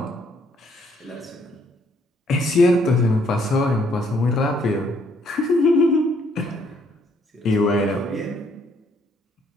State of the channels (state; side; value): normal; both; correlation 0.67